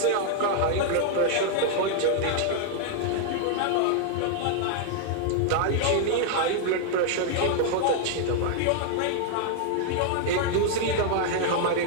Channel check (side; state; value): both; different; correlation 0.00